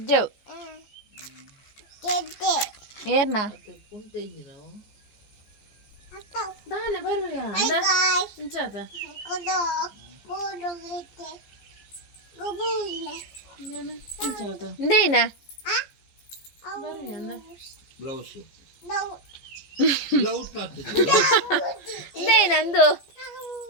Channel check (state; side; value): late; right; 14 ms